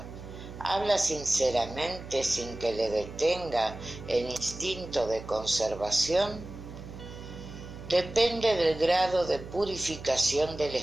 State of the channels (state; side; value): noise; right; hum, 13 dB below the sound